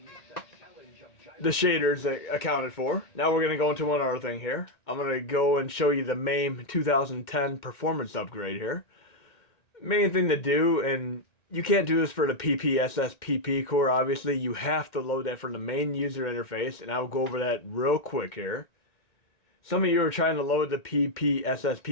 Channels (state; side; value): late; right; 2.1 ms